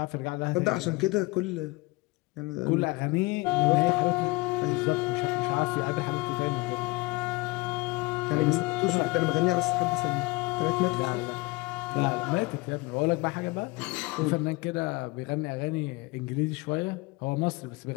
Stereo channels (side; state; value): right; quieter; 24.2 dB